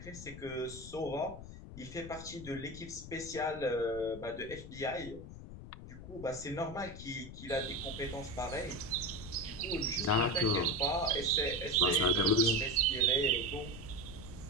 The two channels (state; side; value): noise; left; rumble, 13 dB below the sound